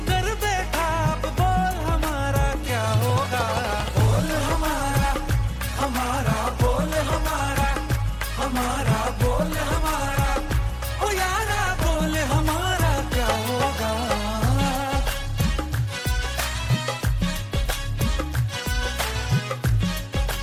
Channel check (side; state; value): both; identical; correlation 1.00